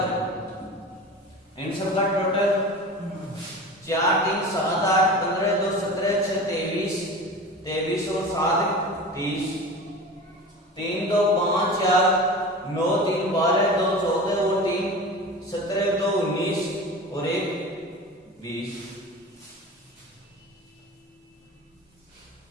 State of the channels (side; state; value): both; normal; correlation 0.34